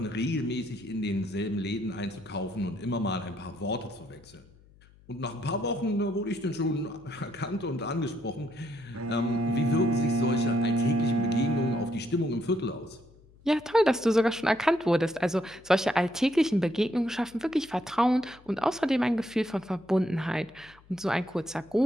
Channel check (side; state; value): left; noise; hum, 27 dB below the sound